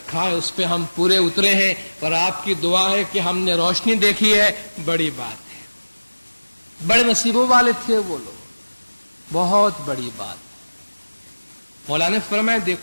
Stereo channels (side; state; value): both; inverted; correlation -1.00